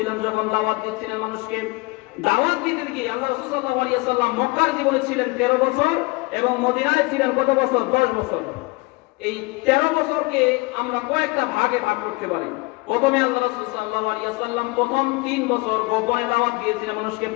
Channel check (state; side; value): quieter; right; 25.2 dB